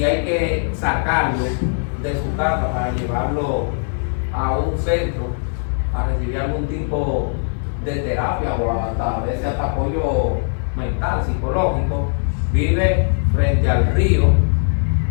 hay que sacarlo de su casa para llevarlo a un centro a recibir algún tipo de terapia o a veces hasta apoyo mental, psicológico. Vive frente al río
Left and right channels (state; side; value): silent; right; 56 dB below the other